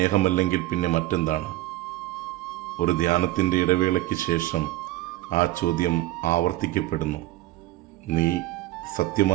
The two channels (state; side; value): quieter; left; 17.0 dB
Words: പിന്നെ മറ്റെന്താണ്? ഒരു ധ്യാനത്തിൻ്റെ ഇടവേളയ്ക്ക് ശേഷം ആ ചോദ്യം ആവർത്തിക്കപ്പെടുന്നു. നീ